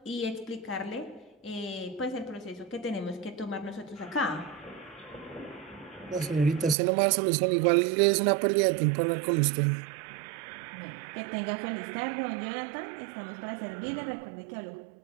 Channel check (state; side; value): drops out; left; at 6.8 s